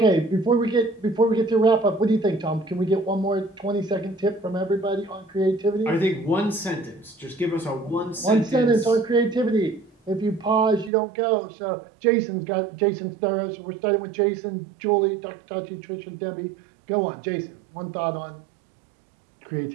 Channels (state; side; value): drops out; left; at 10.9 s